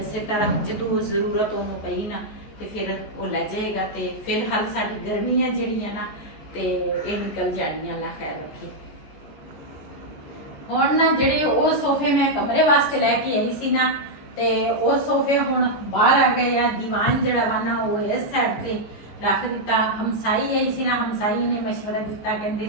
ਤਰ੍ਹਾਂ ਜਦੋਂ ਜ਼ਰੂਰਤ ਉਹਨੂੰ ਪਈ ਨਾ ਤੇ ਫਿਰ ਉਹ ਲੈ ਜਾਏਗਾ ਤੇ ਫਿਲਹਾਲ ਸਾਡੀ ਗਰਮੀਆਂ ਜਿਹੜੀਆਂ ਨਾ ਤੇ ਇਹ ਨਿਕਲ ਜਾਣੀਆਂ ਅੱਲਾਹ ਖੈਰ ਰੱਖੇ ਹੁਣ ਨਾ ਜਿਹੜੇ ਉਹ ਸੋਫੇ ਮੈਂ ਕਮਰੇ ਵਾਸਤੇ ਲੈ ਕੇ ਆਈ ਸੀ ਨਾ ਤੇ ਉਹ ਸੋਫੇ ਹੁਣ ਬਾਹਰ ਆ ਗਏ ਆ ਦੀਵਾਨ ਜਿਹੜਾ ਵਾ ਨਾ ਉਹ ਇਸ ਸਾਈਡ ਤੇ ਰੱਖ ਦਿੱਤਾ ਹਮਸਾਈ ਆਈ ਸੀ ਨਾ ਹਮਸਾਈ ਨੇ ਮਸ਼ਵਰਾ ਦਿੱਤਾ ਕਹਿੰਦੇ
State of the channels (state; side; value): late; right; 15 ms